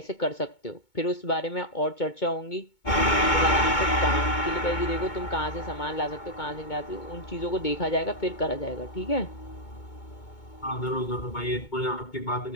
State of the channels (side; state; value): right; late; 2.2 ms